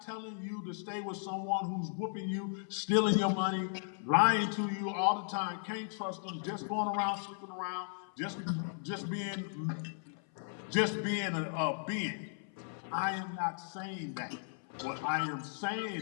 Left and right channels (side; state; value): right; silent; 54 dB below the other